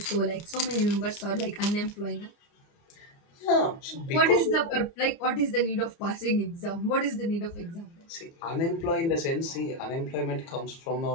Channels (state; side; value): late; right; 30 ms